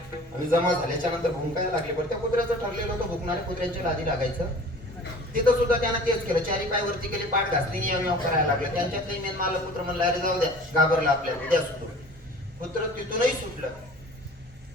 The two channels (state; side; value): normal; both; correlation 0.45